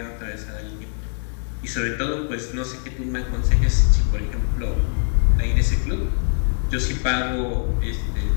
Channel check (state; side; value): silent; right; digital silence